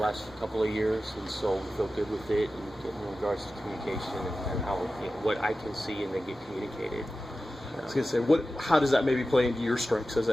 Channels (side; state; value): both; normal; correlation 0.94